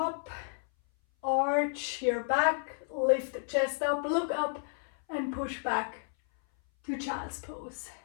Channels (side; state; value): right; silent; 57 dB below the other